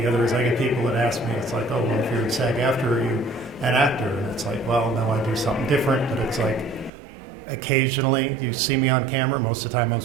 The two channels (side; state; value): left; drops out; at 6.9 s